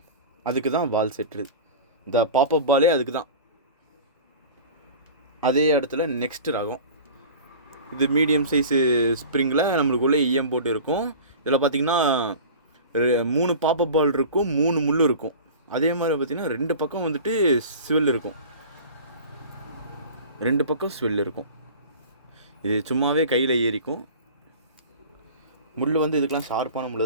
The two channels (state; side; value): inverted; both; correlation -0.37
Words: அதுக்கு தான் பால் செட்டு. இந்த பாப்அப் பாலே அதுக்கு தான். அதே இடத்துல நெக்ஸ்ட் ரகம். இது மீடியம் சைஸு ஸ்ப்ரிங்கில் நம்மளுக்குள்ளே ஈயம் போட்டு இருக்கும். இதில் பார்த்திங்கன்னா 3 பாப்அப் பால் இருக்கும், 3 முள் இருக்கும். அதே மாதிரி பார்த்திங்கன்னா 2 பக்கம் வந்துட்டு ஸ்வெல் இருக்கும். 2 பக்கம் ஸ்வெல் இருக்கும். இது சும்மாவே கையில் ஏறிக்கும். முள் வந்து இதுக்கெலாம் ஷார்ப்பான